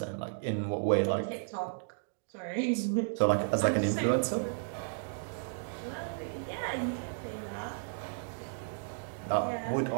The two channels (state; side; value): silent; left; digital silence